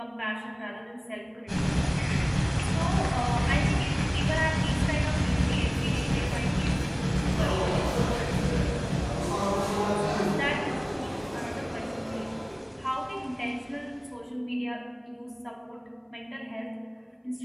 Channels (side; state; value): both; identical; correlation 1.00